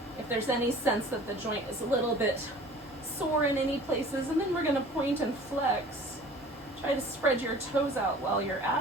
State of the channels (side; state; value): both; normal; correlation 0.46